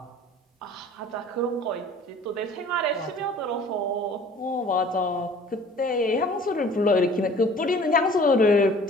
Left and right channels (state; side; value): normal; both; correlation 0.49